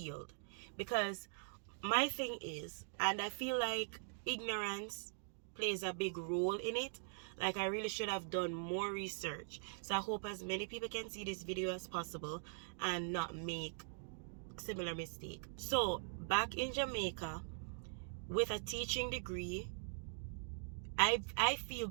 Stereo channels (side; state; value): left; silent; digital silence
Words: because my thing is, and I feel like ignorance plays a big role in it. Like, I really should have done more research. So I hope as many people can see this video as possible and not make similar mistake. So back in Jamaica, with a teaching degree, I feel,